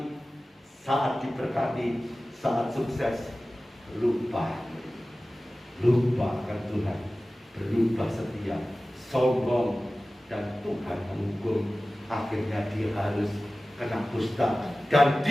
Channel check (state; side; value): normal; both; correlation 0.97